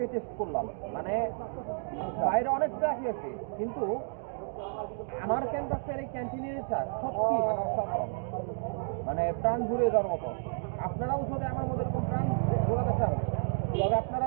টেস্ট করলাম। মানে বাইরে অনেক চা খেয়েছি, কিন্তু আমার ক্যাম্পাসের এই ক্যান্টিনের চা সত্যি মানে অসাধারণ, মানে প্রাণ জুড়িয়ে যাওয়ার মতো। আপনারাও যদি আমার মতো এরকম প্রাণ জোড়াতে চান, তবে আপনারা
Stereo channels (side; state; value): left; silent; digital silence